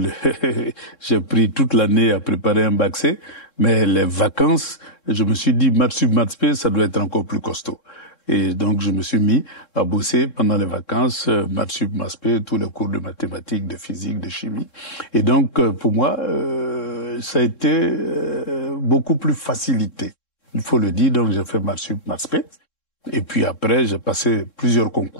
j'ai pris toute l'année à préparer un bac C, mais les vacances, je me suis dit, maths sup, maths spé, ça doit être encore plus costaud. Et donc, je me suis mis à bosser pendant les vacances, maths sup, maths spé, tous les cours de mathématiques, de physique, de chimie. Et donc, pour moi, ça a été beaucoup plus facilité. Il faut le dire, donc j'ai fait maths sup, maths spé. Et puis après, j'ai passé plusieurs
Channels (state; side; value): late; right; 3.7 ms